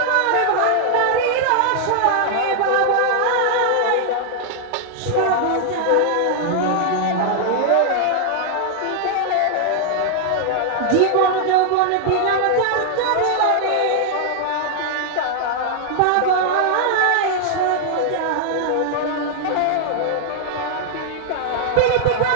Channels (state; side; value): different; both; correlation 0.00